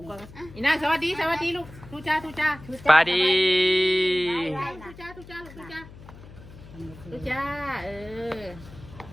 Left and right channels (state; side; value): noise; left; hum, 18 dB below the sound